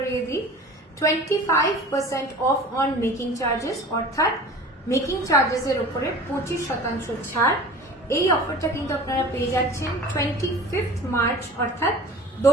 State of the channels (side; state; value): both; normal; correlation 0.40